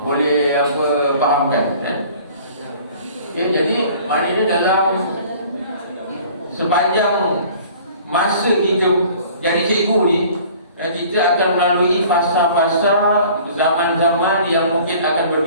apa fahamkan. Okey, jadi maknanya dalam sepanjang masa kita jadi cikgu ni, kita akan melalui fasa-fasa zaman-zaman yang mungkin akan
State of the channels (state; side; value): inverted; both; correlation -0.49